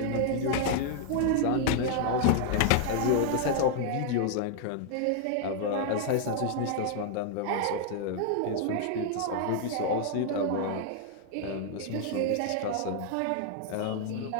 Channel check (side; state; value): both; different; correlation 0.00